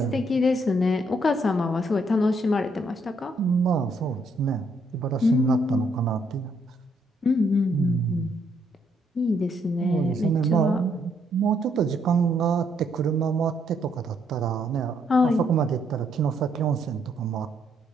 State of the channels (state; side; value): normal; both; correlation 0.72